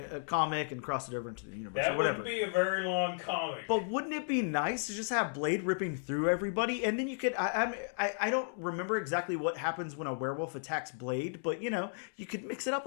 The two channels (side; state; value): right; silent; digital silence